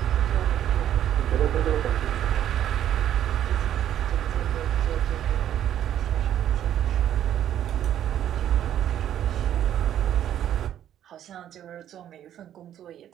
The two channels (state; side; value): quieter; left; 10.9 dB